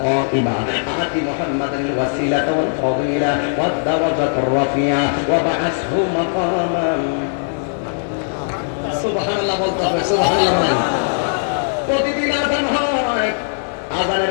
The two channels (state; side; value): silent; right; digital silence